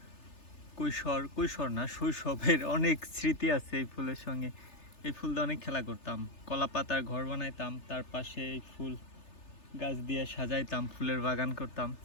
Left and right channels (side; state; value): right; late; 3.3 ms